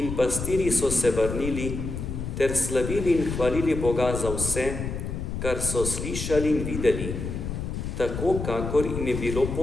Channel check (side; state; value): left; noise; rumble, 5 dB below the sound